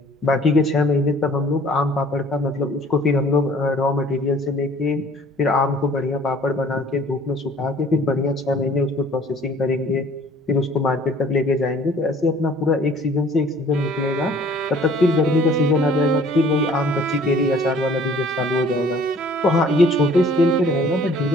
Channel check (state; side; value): normal; both; correlation 0.54